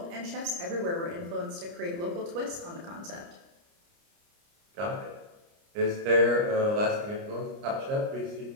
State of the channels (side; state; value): left; late; 29 ms